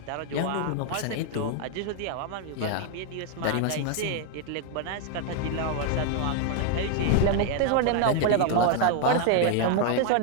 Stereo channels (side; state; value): both; different; correlation 0.00